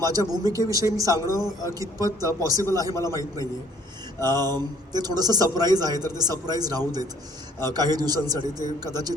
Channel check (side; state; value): both; normal; correlation 0.59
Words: भूमिकेविषयी मी सांगणं कितपत पॉसिबल आहे मला माहीत नाही आहे. ते थोडंसं सरप्राईज आहे, तर ते सरप्राईज राहू देत काही दिवसांसाठी. ते कदाचित